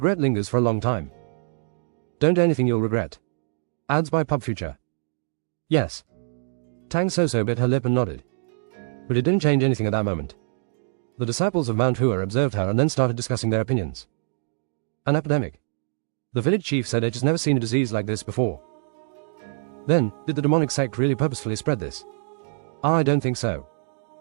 lingers for a long time. Don't do anything you'll regret. Ads by Pub Future. Yes. Tang Soso bit her lip and nodded. But it didn't change anything at that moment. The disciples of Mount Hua observed her and then started discussing their opinions. An epidemic. The village chief said it has never seen a disease like this before. Then, did the demonic sect really purposefully spread this? I don't think so.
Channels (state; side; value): silent; left; 59 dB below the other